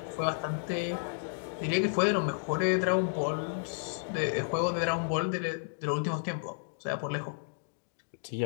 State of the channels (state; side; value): silent; right; digital silence